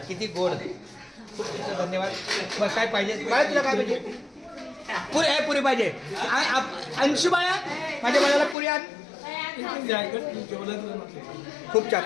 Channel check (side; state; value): right; drops out; at 8.6 s